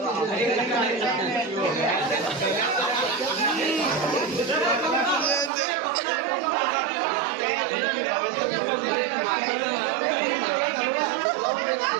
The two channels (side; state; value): left; drops out; at 5.5 s